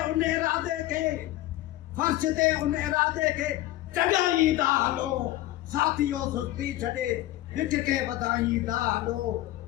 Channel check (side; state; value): right; quieter; 15.9 dB